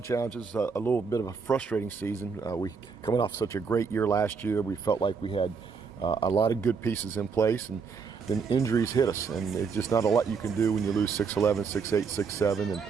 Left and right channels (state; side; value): quieter; left; 5.5 dB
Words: challenges. A little bit of a frustrating season. We coming off such a great year last year. We felt like we had a lot of good pieces in place, and then injuries hit us. And it's just not a lot you can do when you lose 6'11", 6'8", 6'7", and